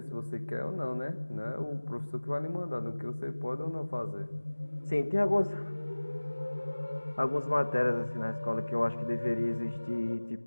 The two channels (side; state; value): both; inverted; correlation -1.00